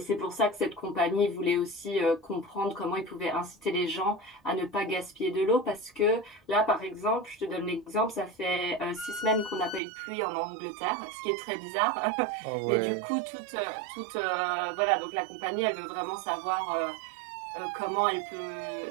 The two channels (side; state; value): left; drops out; at 9.8 s